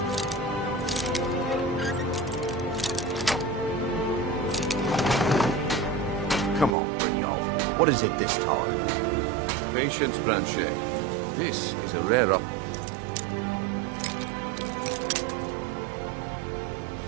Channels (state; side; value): drops out; left; at 6.8 s